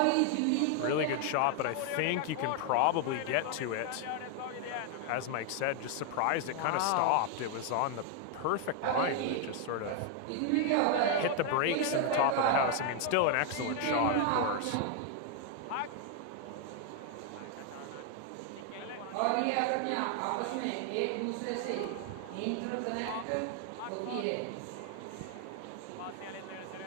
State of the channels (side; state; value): both; different; correlation 0.00